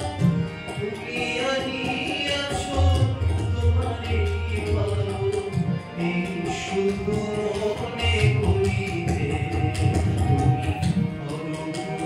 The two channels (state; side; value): identical; both; correlation 1.00